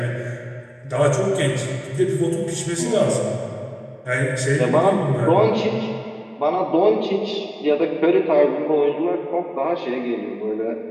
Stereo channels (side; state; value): both; identical; correlation 1.00